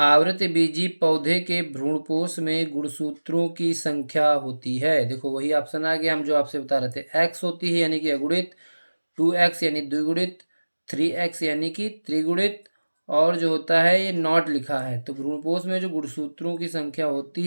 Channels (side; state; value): both; inverted; correlation -1.00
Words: बीजी पौधे के भ्रूणपोष में गुणसूत्रों की संख्या होती है। देखो वही ऑप्शन आ गया, हम जो आपसे बता रहे थे। x होती है यानी कि अगुणित, 2x यानी द्विगुणित, 3x यानी कि त्रिगुणित, और जो होता है ये नॉट लिखा है। तो भ्रूणपोष में जो गुणसूत्रों की संख्या होती